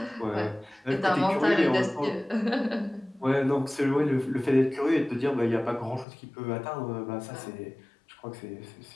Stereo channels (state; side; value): drops out; right; at 6.1 s